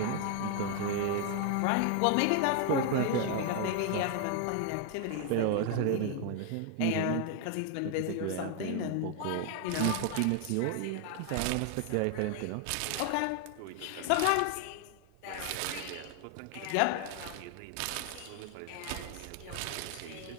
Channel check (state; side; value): different; both; correlation 0.00